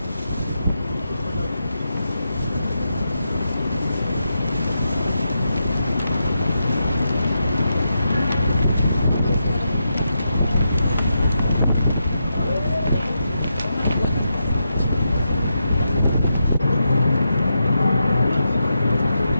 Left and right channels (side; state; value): both; inverted; correlation -0.86